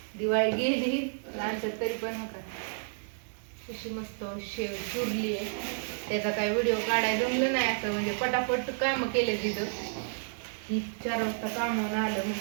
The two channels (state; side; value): silent; left; digital silence